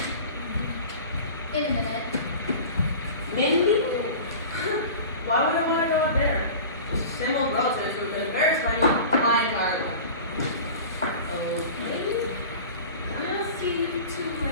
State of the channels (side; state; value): both; inverted; correlation -0.37